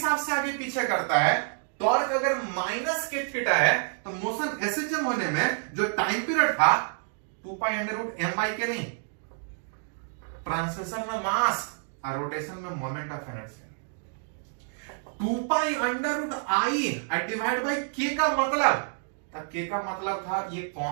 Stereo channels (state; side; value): silent; left; 59 dB below the other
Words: से आगे पीछे करता है, टॉर्क अगर माइनस के थीटा है, तो मोशन एसएचएम होने में जो टाइम पीरियड था 2 pi under root M by K नहीं, ट्रांसलेशन में मास और रोटेशन में moment of inertia. 2 pi under root I divide by K का मतलब, के का मतलब था ये